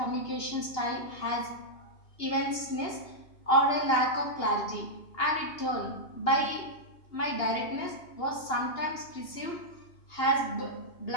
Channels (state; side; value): late; right; 2.8 ms